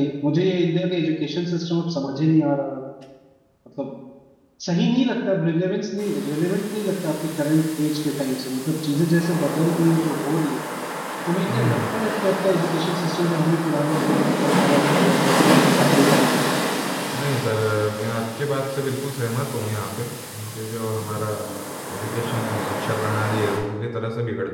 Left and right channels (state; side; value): identical; both; correlation 1.00